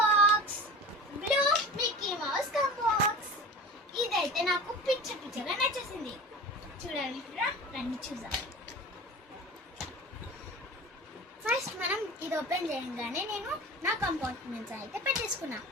బ్లూ మిక్కీ మౌస్ కంబాక్స్. ఇదైతే నాకు పిచ్చగా నచ్చేసింది. చూడాలనుకుంటారా? రండి చూద్దాం. ఫస్ట్ మనం ఇది ఓపెన్ చేయగానే నేను నా కంపార్ట్మెంట్స్ అయితే పెట్టేసుకున్నా.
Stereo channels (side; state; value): both; normal; correlation 0.35